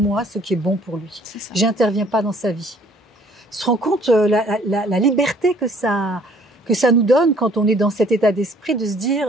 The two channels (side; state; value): both; normal; correlation 0.59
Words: ce qui est bon pour lui. J'interviens pas dans sa vie. Il se rend compte la liberté que ça nous donne quand on est dans cet état d'esprit de se